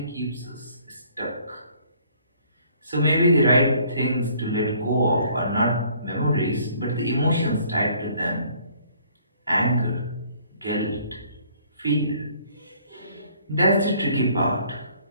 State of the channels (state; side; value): inverted; both; correlation -0.59